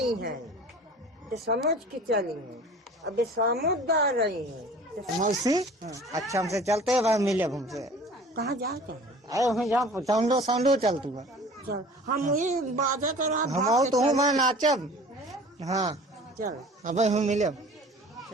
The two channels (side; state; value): both; normal; correlation 0.44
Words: हैं तो समझ के चली हैं अब समझदार रही हैं तो मौसी अच्छा हमसे चलते हैं भाई मिले हमसे कहाँ जाते हैं आए हमें जहाँ साउंडो साउंडो चलतू बा चल हम ये बाजा कर हम तो हूँ मैं नाचब हाँ चल अब हम मिले